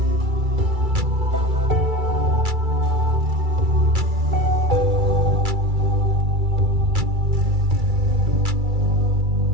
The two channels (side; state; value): left; late; 2.3 ms